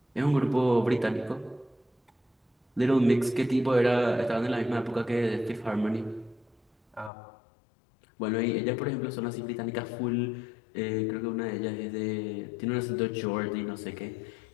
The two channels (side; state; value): right; drops out; at 7.1 s